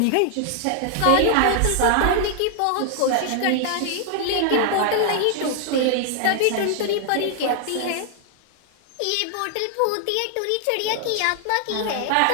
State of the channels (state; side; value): different; both; correlation 0.00